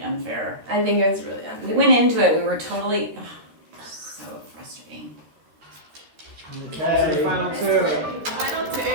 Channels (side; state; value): left; late; 13 ms